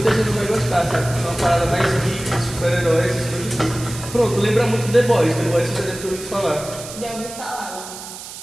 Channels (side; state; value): right; noise; hiss, 12 dB below the sound